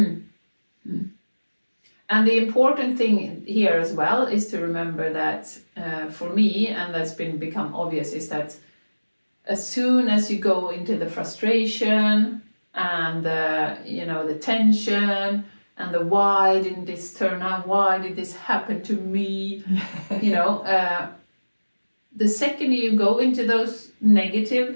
And the important thing here as well is to remember that for me, and that's become obvious, is that as soon as you go into the frustration and the tension and the why didn't this turn out, why did this happen to me, the second you go into those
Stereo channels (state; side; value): inverted; both; correlation -1.00